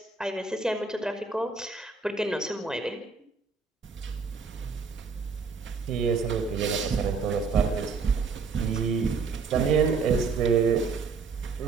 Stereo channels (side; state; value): left; quieter; 4.9 dB